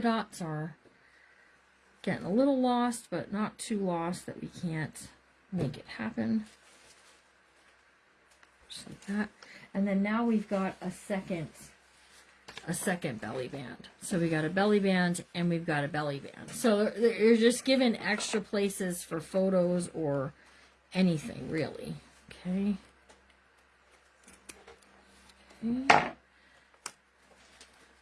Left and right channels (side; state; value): both; identical; correlation 1.00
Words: are getting a little lost, but not too lost that we can't make it happen. Just like that. And then now we've got a second belly band. So we got a belly band and we've got a belly band. So you're just given extra places for photos or anything, really. Okay. Okay.